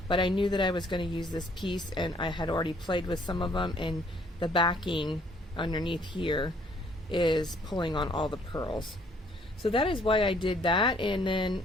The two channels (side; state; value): both; normal; correlation 0.63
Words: But I knew that I was going to use this piece, and I had already played with some of them, and the backing underneath here is pulling on all the pearls. So that is why I did that, and then